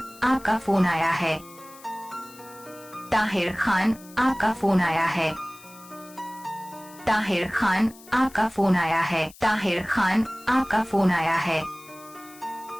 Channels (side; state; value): left; noise; hiss, 22 dB below the sound